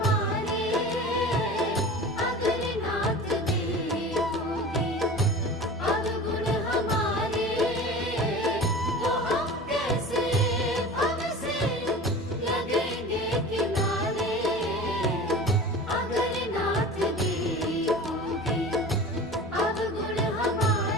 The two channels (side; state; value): both; normal; correlation 0.36